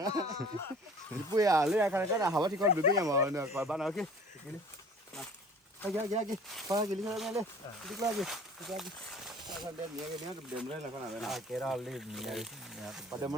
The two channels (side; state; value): both; normal; correlation 0.47